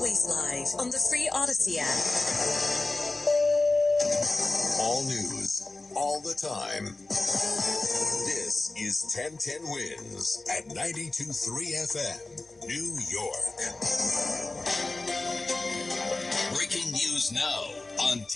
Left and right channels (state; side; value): quieter; right; 3.1 dB